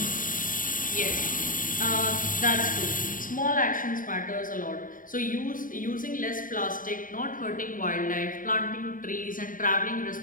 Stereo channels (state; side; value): late; right; 0.39 ms